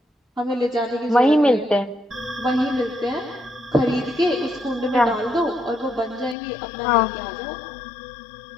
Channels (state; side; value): drops out; right; at 6.4 s